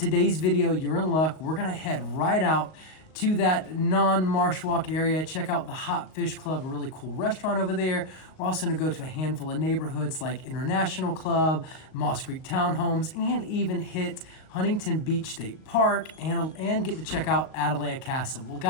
video, you're in luck. We're gonna head right out to that non-marsh walk area, check out the Hot Fish Club, a really cool restaurant over there. We're also gonna go to a handful of neighborhoods like International Club, Moss Creek Townhomes, and even hit Huntington Beach State Park and get to check out Atalaya Castle. Well,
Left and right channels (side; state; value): right; late; 38 ms